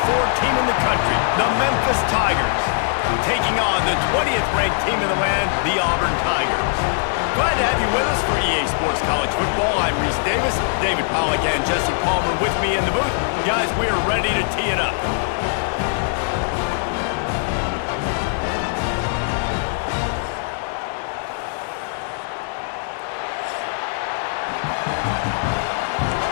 team in the country, the Memphis Tigers, taking on the 20th ranked team in the land, the Auburn Tigers. Glad to have you with us for EA Sports College Football. I'm Reese Davis, David Pollack and Jesse Palmer with me in the booth. Guys, we are ready to tee it up.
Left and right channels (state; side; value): silent; right; digital silence